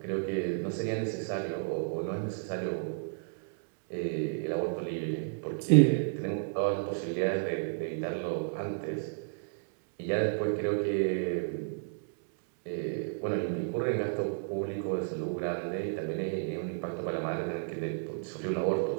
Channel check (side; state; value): left; silent; digital silence